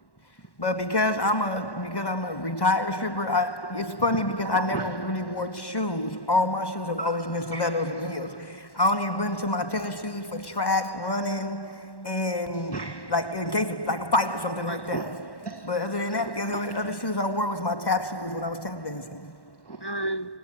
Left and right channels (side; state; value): right; late; 1.1 ms